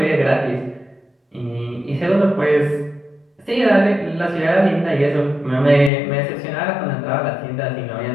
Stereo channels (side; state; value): right; drops out; at 5.9 s